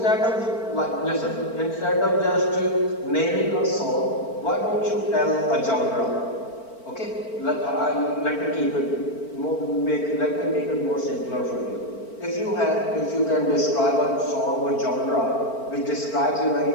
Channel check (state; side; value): late; right; 4.4 ms